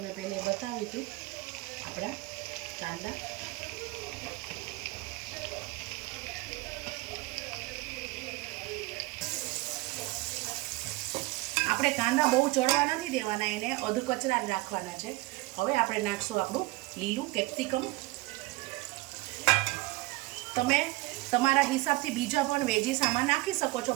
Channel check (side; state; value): left; quieter; 21.8 dB